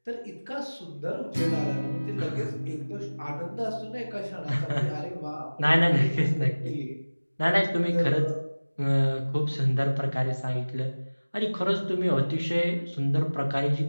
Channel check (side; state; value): both; inverted; correlation -1.00